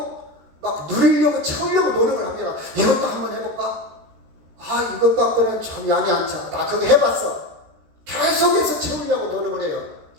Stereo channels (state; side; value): late; left; 13 ms